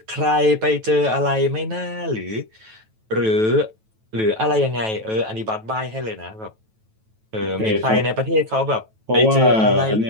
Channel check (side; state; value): left; late; 9.2 ms